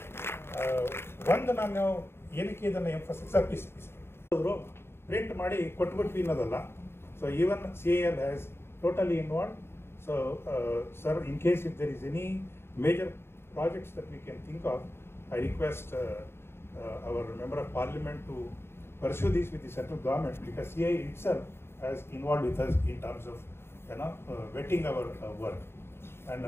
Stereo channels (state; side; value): late; right; 0.12 ms